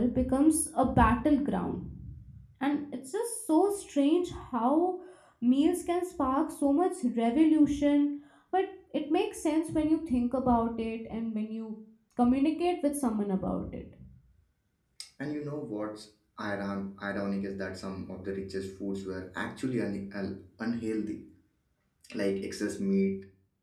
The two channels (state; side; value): identical; both; correlation 1.00